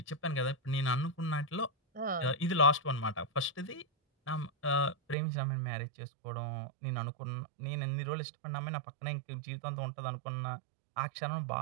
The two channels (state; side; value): drops out; left; at 5.2 s